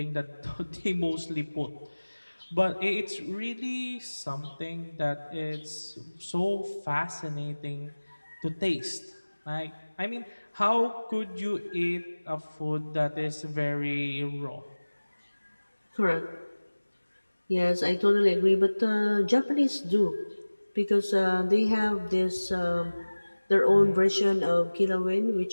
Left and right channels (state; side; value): inverted; both; correlation -1.00